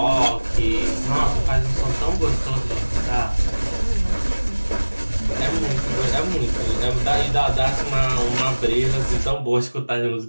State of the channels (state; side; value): inverted; both; correlation -1.00